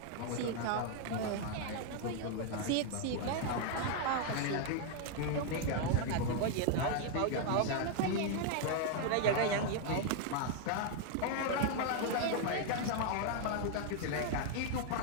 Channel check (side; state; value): both; different; correlation 0.00